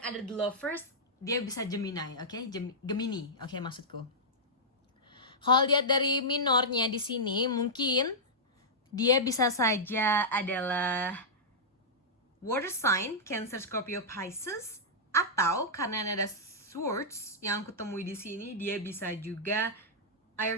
The Lovers, dia bisa Gemini, oke? Gemini, oke, maksudku. Kalau lihat dari minornya di sini, mungkin dia bisa saja adalah water sign, Cancer, Scorpio, Pisces, atau karena ada swords yang aku temui di sini, dia bisa juga air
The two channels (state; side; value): normal; both; correlation -0.11